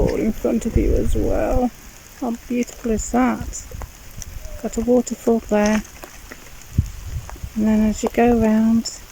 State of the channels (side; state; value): both; identical; correlation 1.00